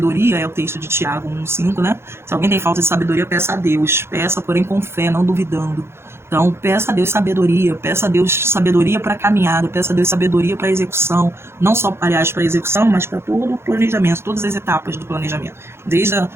é o texto de Tiago 1,5, né, se alguém tem falta de sabedoria, peça a Deus, peça, porém com fé, não duvidando. Então, peça a Deus sabedoria para a caminhada, peça a Deus sabedoria para a execução, não só, aliás, para a execução, mas para todo o planejamento, todas as etapas do planejamento, desde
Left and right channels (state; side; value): late; left; 0.12 ms